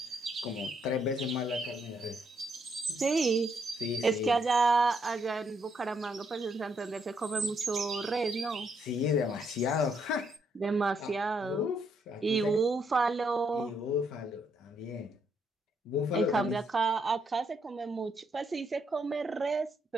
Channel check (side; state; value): both; normal; correlation 0.75